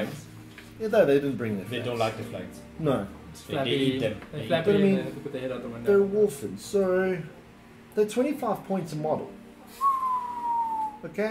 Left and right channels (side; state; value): both; identical; correlation 1.00